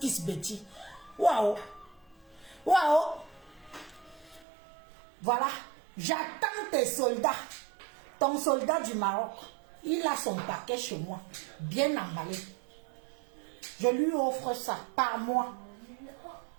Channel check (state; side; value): drops out; left; at 4.5 s